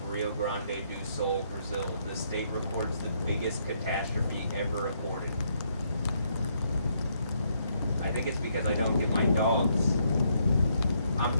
Rio Grande do Sul, Brazil. The state reports the biggest catastrophe ever reported. I think it's because I don't get my dogs.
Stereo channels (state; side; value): inverted; both; correlation -0.73